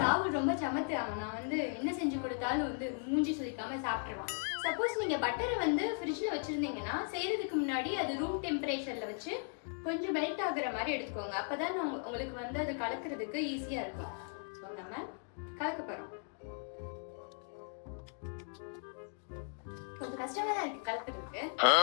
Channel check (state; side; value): silent; right; 53 dB below the other